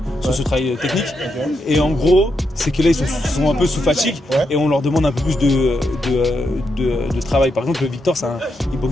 sur ce travail technique. Okay. Et en gros, c'est que là, ils sont un peu sous fatigue et on leur demande un peu plus de travail. Par exemple, Victor, il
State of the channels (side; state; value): both; normal; correlation 0.82